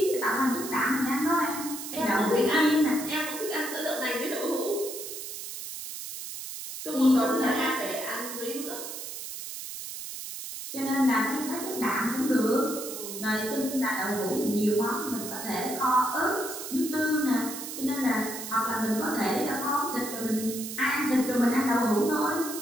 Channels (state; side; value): noise; right; hiss, 8 dB below the sound